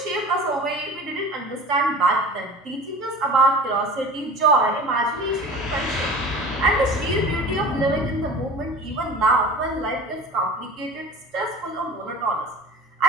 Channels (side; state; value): both; normal; correlation 0.38